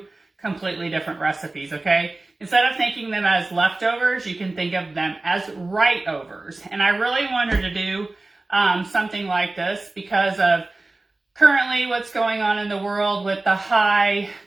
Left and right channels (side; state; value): left; quieter; 3.1 dB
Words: completely different recipes, okay? Instead of thinking them as leftovers, you can think of them as right-overs. And I really wanted to do something like this because of currently what's going on in the world with the high